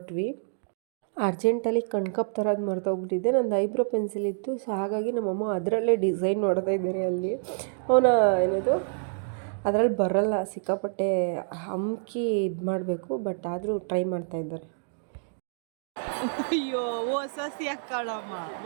ಅರ್ಜೆಂಟಲ್ಲಿ ಕಣ್ಕಪ್ ಥರದ್ದು ಮರ್ತೋಗ್ಬಿಟ್ಟಿದ್ದೆ. ನಂದು ಐಬ್ರೋ ಪೆನ್ಸಿಲ್ ಇತ್ತು, ಸೊ ಹಾಗಾಗಿ ನಮ್ಮಮ್ಮ ಅದರಲ್ಲೇ ಡಿಸೈನ್ ನೋಡ್ತಾ ಇದ್ದಾರೆ. ಅಲ್ಲಿ ಅವನ ಏನದು ಅದರಲ್ಲಿ ಬರಲ್ಲ, ಸಿಕ್ಕಾಪಟ್ಟೆ ಹಮ್ಕಿ ಇದು ಮಾಡಬೇಕು, ಬಟ್ ಆದರೂ ಟ್ರೈ ಮಾಡ್ತಾಯಿದ್ದಾರೆ. ಅಯ್ಯೋ ಹೊಸಸಿ ಹಾಕಳಮ್ಮ,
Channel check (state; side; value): silent; left; digital silence